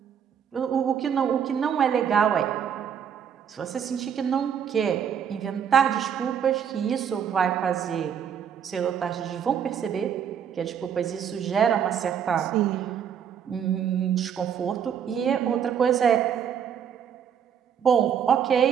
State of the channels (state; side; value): quieter; left; 8.2 dB